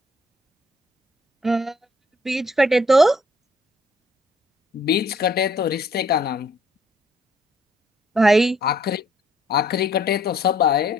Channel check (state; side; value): normal; both; correlation 0.64